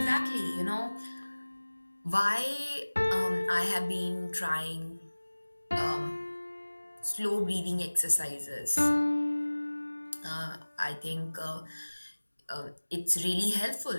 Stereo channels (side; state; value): both; inverted; correlation -1.00